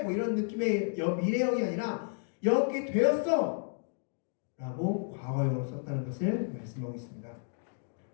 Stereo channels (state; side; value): silent; right; 56 dB below the other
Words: 뭐 이런 느낌의 미래형이 아니라 영화롭게 되었어 라고 과거형으로 썼다는 것을 말씀하고 있습니다.